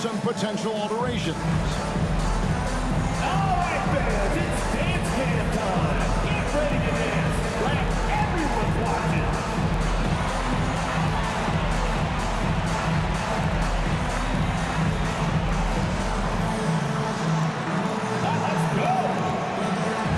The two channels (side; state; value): both; identical; correlation 1.00